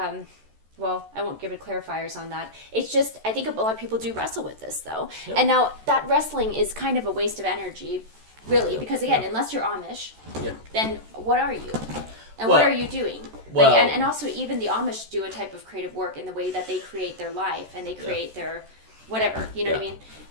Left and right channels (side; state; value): left; late; 14 ms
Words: well, I won't give it clarifiers on that. It's just, I think a lot of people do wrestle with this though, and now that wrestling is kind of a waste of energy, really, because again, unless you're Amish, then what are you? And what are you doing? Well, like, and also even the Amish do a type of creative work in the way that they create their life and they create their whatever, you know what I mean?